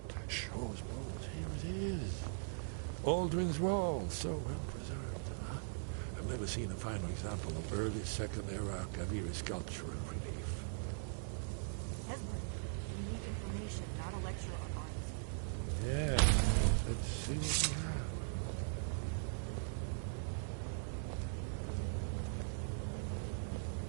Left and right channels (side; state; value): left; silent; digital silence